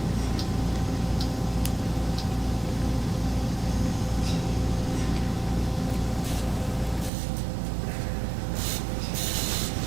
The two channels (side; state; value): left; drops out; at 7.1 s